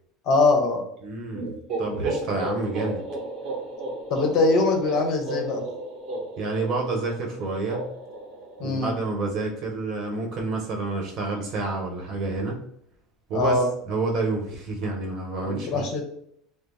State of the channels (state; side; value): normal; both; correlation 0.33